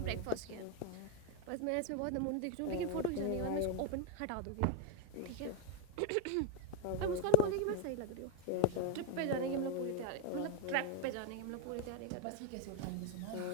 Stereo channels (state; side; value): different; both; correlation 0.00